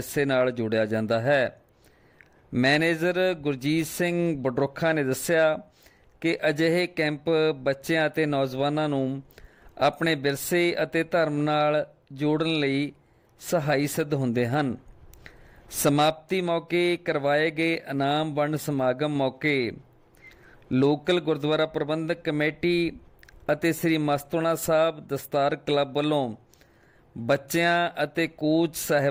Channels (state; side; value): identical; both; correlation 1.00